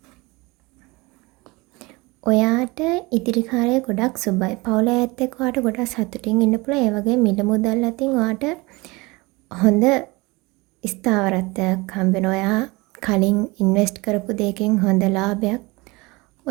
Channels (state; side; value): quieter; left; 24.0 dB